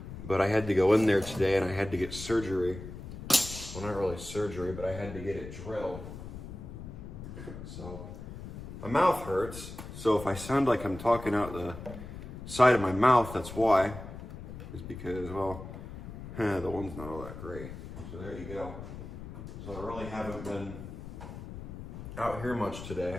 but I had to go in there today and I had to get surgery. Well, not really surgery, but I had to get it drilled. So my mouth hurts, so if I sound like I'm talking out the side of my mouth, that's why. Is because, well, the one's not all that great. So there you go. So I really haven't been out here much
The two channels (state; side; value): noise; left; rumble, 11 dB below the sound